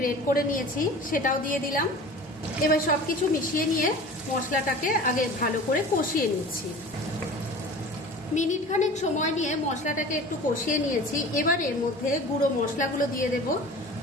করে নিয়েছি সেটাও দিয়ে দিলাম। এবার সবকিছু মিশিয়ে নিয়ে মশলাটাকে আগে ভালো করে কষিয়ে নিচ্ছি। মিনিট খানেক সময় নিয়ে মশলাটাকে একটু কষিয়ে নিয়েছি। এবার এর মধ্যে গুঁড়ো মশলাগুলো দিয়ে দেব।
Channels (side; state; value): both; normal; correlation 0.39